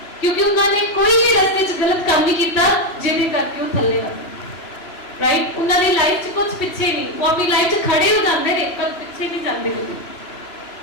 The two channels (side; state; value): right; late; 2.9 ms